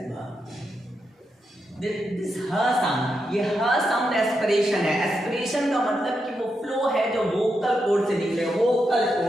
भ। दिस ह साउंड, ये ह साउंड एस्पिरेशन है। एस्पिरेशन का मतलब कि वो फ्लो है जो वोकल कोड से निकले, वोकल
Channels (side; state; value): both; normal; correlation 0.85